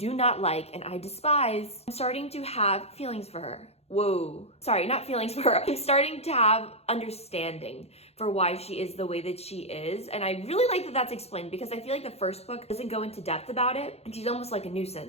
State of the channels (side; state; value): right; late; 0.30 ms